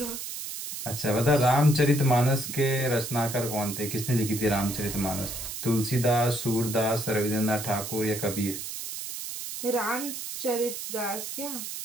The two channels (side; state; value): right; noise; hiss, 7 dB below the sound